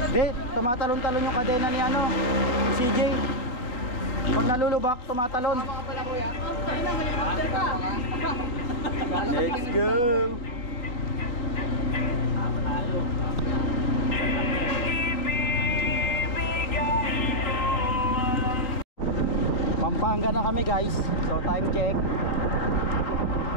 Hindi, tumatalon-talon yung kadena ni ano, CJ. Pag nalulubak, tumatalon. Tama ka pala kuya. Ay na, helicopter ka! Let's go! Pampanga na kami guys. So time check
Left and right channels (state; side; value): late; right; 3.9 ms